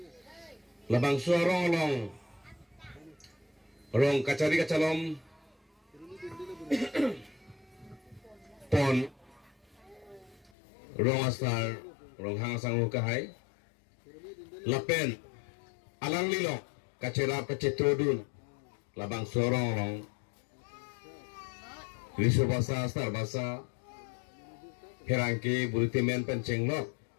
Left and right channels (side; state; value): right; drops out; at 10.5 s